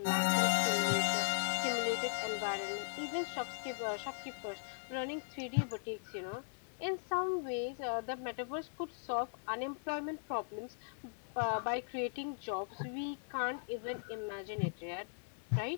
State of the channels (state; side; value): silent; right; 52 dB below the other